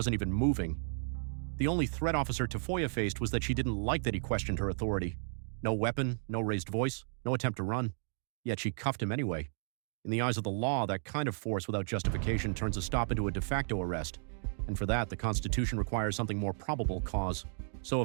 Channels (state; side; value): silent; left; digital silence